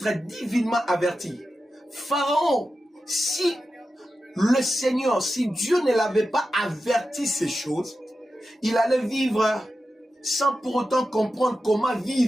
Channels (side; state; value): both; normal; correlation 0.91